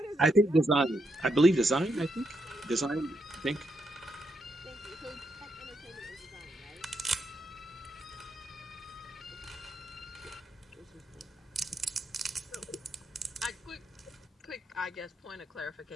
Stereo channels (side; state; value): both; normal; correlation 0.80